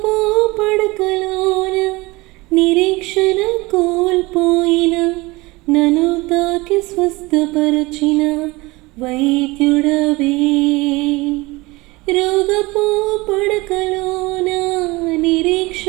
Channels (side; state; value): left; quieter; 22.7 dB